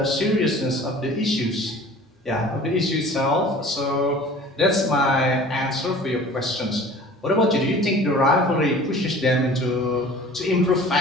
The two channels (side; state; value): both; normal; correlation 0.45